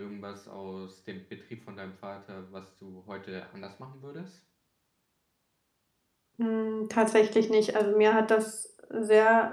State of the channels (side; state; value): both; identical; correlation 1.00